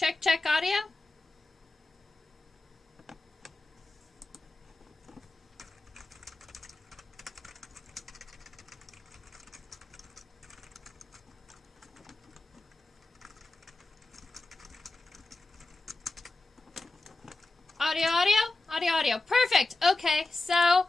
check audio. Audio, audio, audio, audio. Perfect. Okay, so,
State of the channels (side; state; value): right; quieter; 3.1 dB